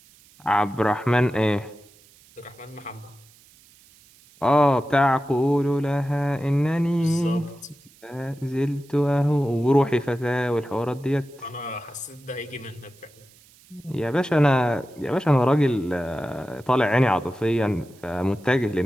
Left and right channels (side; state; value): right; noise; hiss, 27 dB below the sound